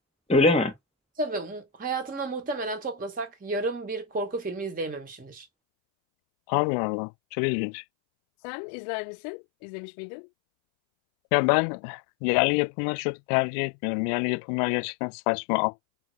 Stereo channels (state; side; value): drops out; right; at 5.5 s